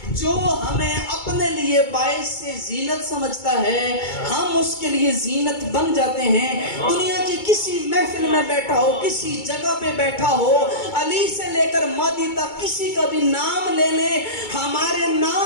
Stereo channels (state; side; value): late; right; 2.2 ms